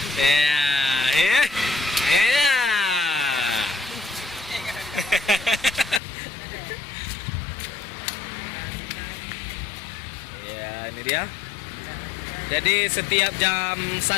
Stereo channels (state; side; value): drops out; right; at 6.0 s